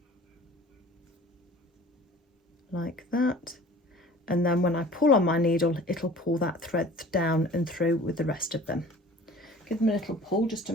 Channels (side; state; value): both; normal; correlation 0.46